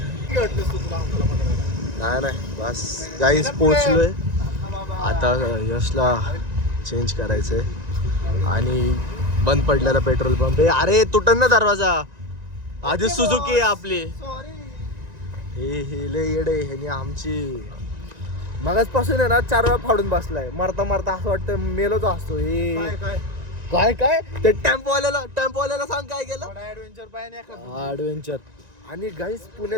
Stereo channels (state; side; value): late; left; 1.9 ms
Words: नाही बस गाईस पोहोचलोय. आता यशला चेंज करायचंय आणि बंद पडलेला पेट्रोल पंप आहे. अरे तुटन ना दरवाजा. आधी सुझुकी आहे आपली. हे लय येडे ह्यानी आमची मगाचपासून आहे ना 4 वेळा फाडून बसलाय. मरता मरता असं वाटतं मेलोच असतो. हे काय ते टेम्पोवाल्याला सांग काय केलं. ऍडव्हेंचर. आणि गाईस